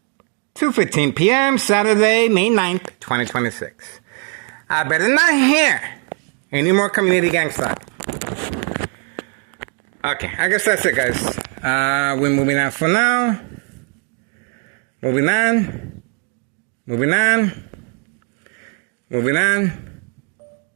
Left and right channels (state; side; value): quieter; left; 39.3 dB